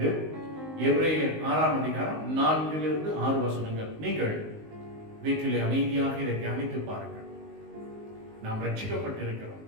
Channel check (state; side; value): late; left; 19 ms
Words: எபிரேயர் 6ஆம் அதிகாரம் 4-6 வசனங்கள். நீங்கள் வீட்டிலே அமைதியாக இதை தியானித்து பாருங்கள். நாம் ரட்சிக்கப்பட்டிருக்கிறோம்.